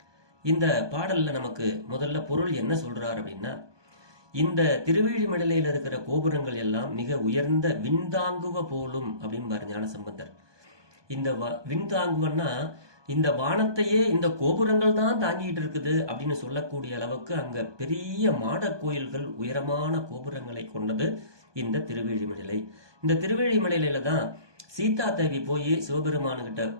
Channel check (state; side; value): late; left; 1.2 ms